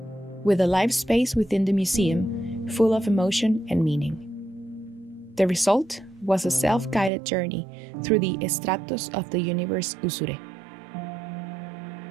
with a live space within the museum full of emotion and meaning. The result was a self-guided journey through the estratos of the universe Usure.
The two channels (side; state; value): left; drops out; at 7.1 s